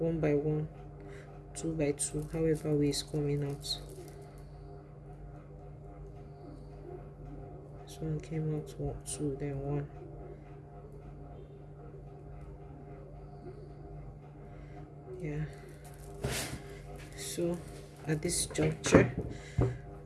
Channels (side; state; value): both; identical; correlation 1.00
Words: by 1, 2 by 2, however way it's coming out. This one came out 2, then 1. Yeah. So at this juncture,